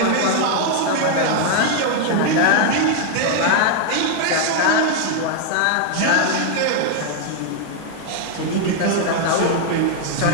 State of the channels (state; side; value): different; both; correlation 0.00